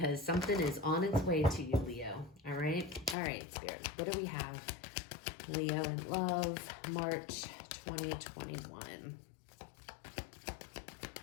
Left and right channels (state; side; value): drops out; right; at 3.2 s